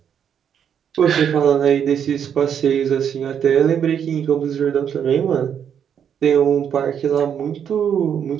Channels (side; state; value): left; quieter; 8.3 dB